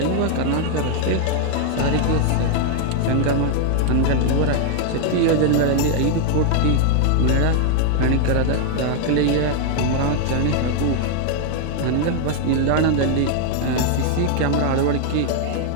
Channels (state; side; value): different; both; correlation 0.00